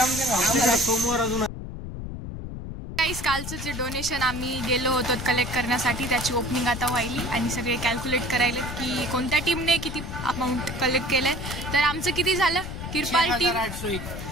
सोमवार अजून कालचं जे डोनेशन आम्ही गेलो होतो कलेक्ट करण्यासाठी त्याची ओपनिंग आता व्हायली आणि सगळे कॅल्क्युलेट करायले की कोणत्या टीमने किती अमाऊंट कलेक्ट केलंय। तर आमचं किती झालं किरपाल टीम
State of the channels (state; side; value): noise; left; rumble, 7 dB below the sound